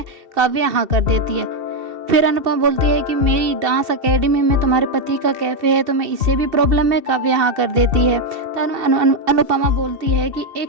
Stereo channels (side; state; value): left; late; 2.7 ms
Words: काव्या हाँ कर देती है। फिर अनुपमा बोलती है कि मेरी डांस एकेडमी में तुम्हारे पति का कैफ़े है, तुम्हें इससे भी प्रॉब्लम है? काव्या हाँ कर देती है। तो अनुपमा बोलती है कि